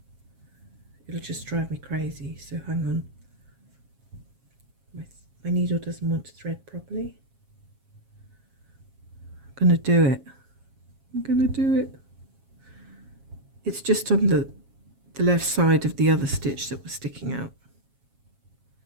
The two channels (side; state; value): left; late; 7.4 ms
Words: it'll just drive me crazy. So hang on. My needle doesn't want to thread properly. I'm going to do it. I'm going to do it. It's just on the left side of the other stitch that was sticking out.